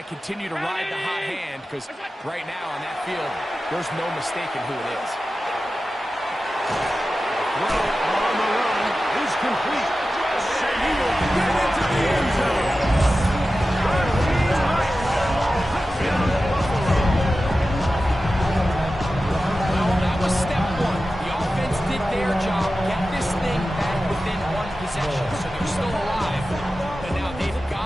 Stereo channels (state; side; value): normal; both; correlation 0.94